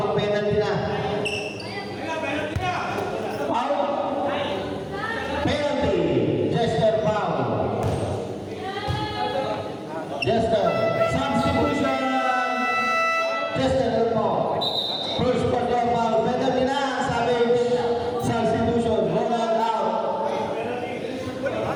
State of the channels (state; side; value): identical; both; correlation 1.00